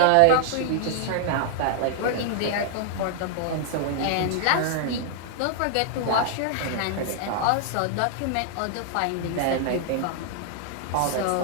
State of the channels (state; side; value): different; both; correlation -0.01